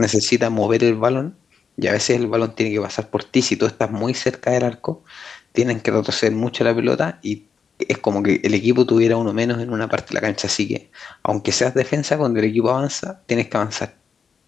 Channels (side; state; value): right; quieter; 6.1 dB